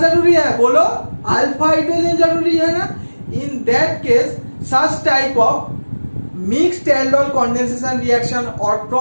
है बोलो, अल्फा हाइड्रोजन जरूरी है ना। इन that case such type of mixed aldol condensation reaction or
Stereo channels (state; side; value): inverted; both; correlation -1.00